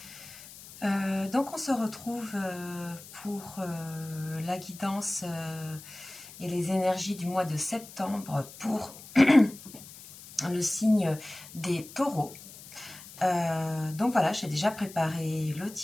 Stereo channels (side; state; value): left; noise; hiss, 17 dB below the sound